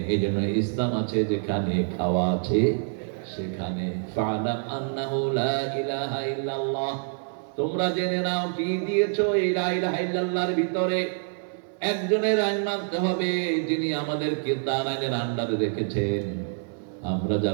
এই জন্য ইসলাম আছে যেখানে খাওয়া আছে সেখানে। ফা'লাম আন্নাহু লা ইলাহা ইল্লাল্লাহ, তোমরা জেনে নাও কি দিয়েছো এই লা ইলাহা ইল্লাল্লাহর ভিতরে একজনের আইন মানতে হবে, যিনি আমাদেরকে তার আইনের আন্ডারে রেখেছেন। আমরা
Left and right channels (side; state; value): left; silent; 61 dB below the other